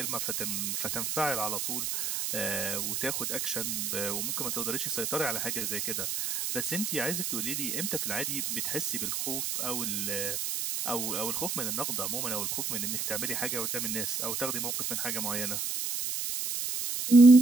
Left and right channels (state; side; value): noise; right; hiss, 1 dB below the sound